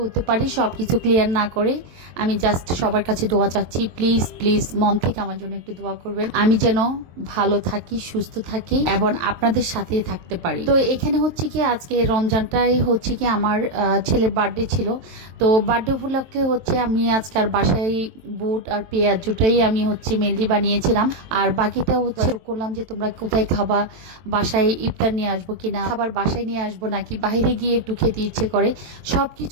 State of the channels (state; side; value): late; left; 23 ms